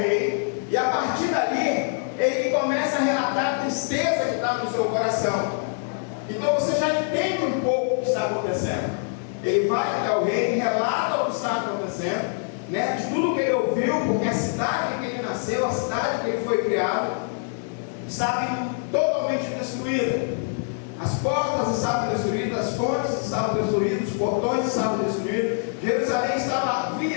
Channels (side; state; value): right; silent; 62 dB below the other